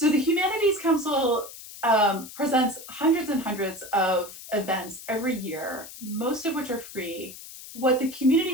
the Humanities Council presents hundreds and hundreds of events every year, most of which are free. What the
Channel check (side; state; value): left; noise; hiss, 14 dB below the sound